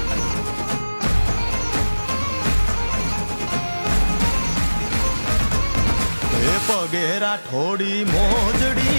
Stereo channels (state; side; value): inverted; both; correlation -1.00